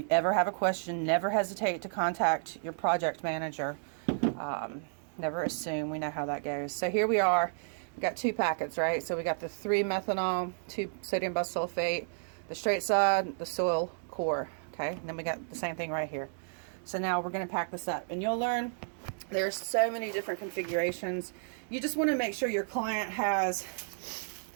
ever have a question, never hesitate to contact your project manager. Never assume. We know how that goes. So here we are. We got 2 packets, right? So we got the 3 methanol, 2 sodium bisulfate, the straight side, the soil core. Okay, and then we got the same thing right here. So now we're going to pack this up, and you'll learn there's so many different configurations. You just want to make sure your client has,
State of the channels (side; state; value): left; silent; digital silence